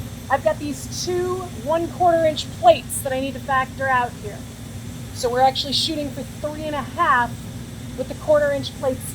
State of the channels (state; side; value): identical; both; correlation 1.00